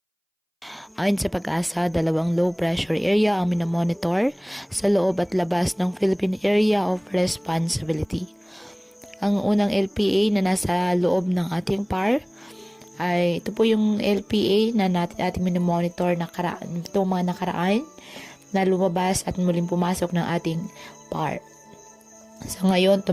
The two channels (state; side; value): identical; both; correlation 1.00